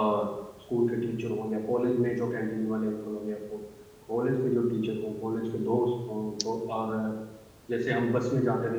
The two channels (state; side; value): identical; both; correlation 1.00